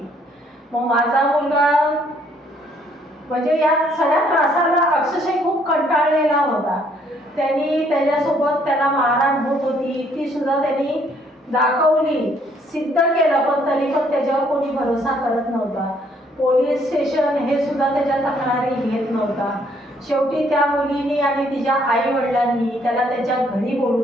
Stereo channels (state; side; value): normal; both; correlation 0.66